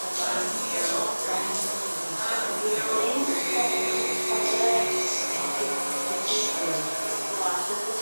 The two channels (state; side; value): inverted; both; correlation -1.00